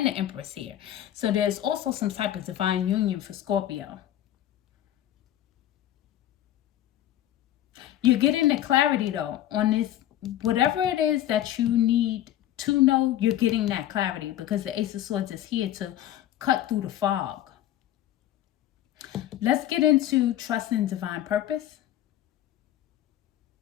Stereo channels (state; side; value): quieter; right; 12.5 dB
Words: the Empress here. So there's also some type of divine union for Scorpio. You're getting the clarity, though, on this. Whatever it is that you need to know, you're getting that clarity because the Ace of Swords is here to cut through the fog. Let's get into trusting divine purpose.